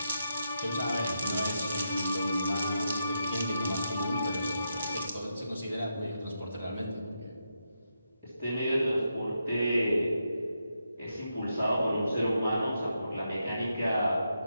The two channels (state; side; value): inverted; both; correlation -0.84